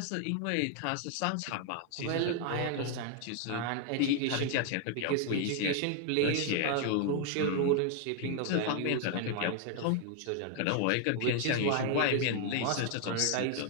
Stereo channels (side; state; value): both; different; correlation 0.00